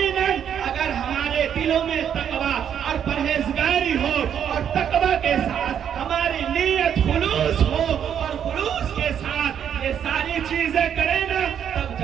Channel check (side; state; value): left; quieter; 8.8 dB